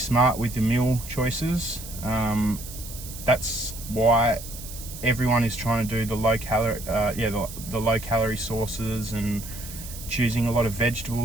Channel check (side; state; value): right; noise; hiss, 12 dB below the sound